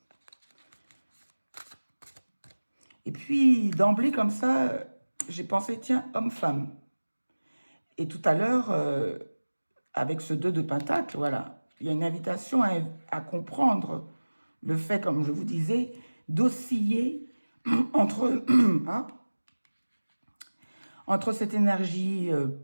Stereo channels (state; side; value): inverted; both; correlation -1.00